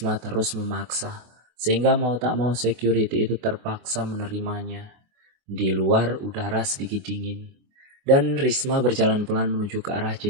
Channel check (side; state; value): left; late; 24 ms